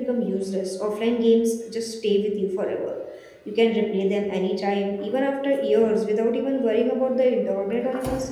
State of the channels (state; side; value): identical; both; correlation 1.00